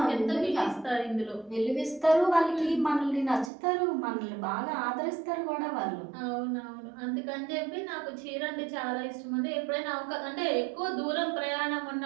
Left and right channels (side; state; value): left; drops out; at 3.5 s